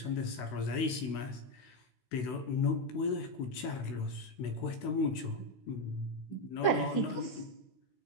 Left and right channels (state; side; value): late; right; 16 ms